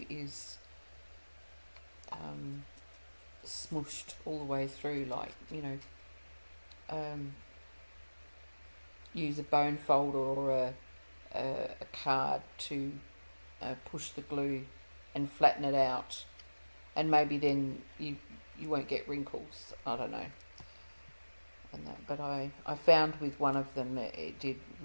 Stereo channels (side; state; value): both; inverted; correlation -1.00